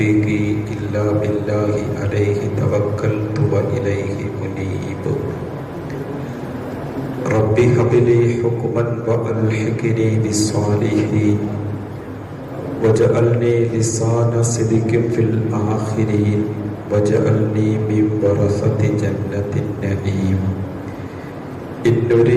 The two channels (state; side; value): identical; both; correlation 1.00